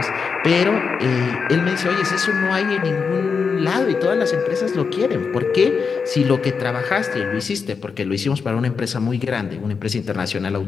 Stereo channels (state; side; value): quieter; right; 5.5 dB